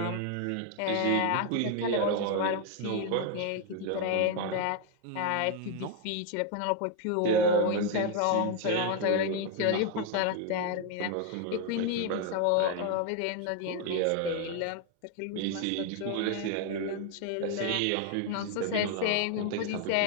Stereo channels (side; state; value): both; different; correlation 0.01